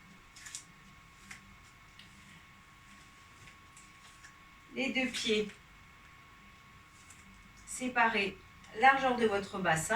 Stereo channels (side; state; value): both; identical; correlation 1.00